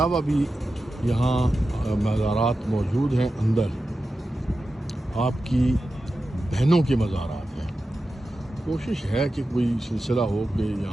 بھی یہاں مزارات موجود ہیں اندر، آپ کی بہنوں کے مزارات ہیں۔ کوشش ہے کہ کوئی سلسلہ ہو کہ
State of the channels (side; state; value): both; normal; correlation 0.92